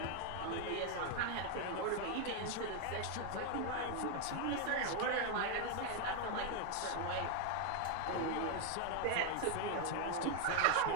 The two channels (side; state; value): both; different; correlation 0.00